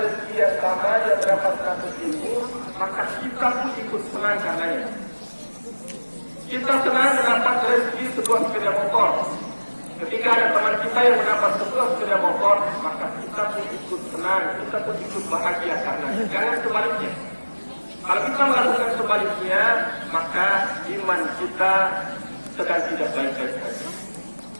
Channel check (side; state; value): both; inverted; correlation -1.00